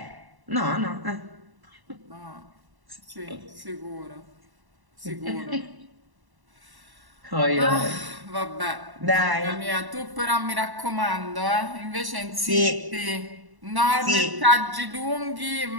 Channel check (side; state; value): left; late; 1.1 ms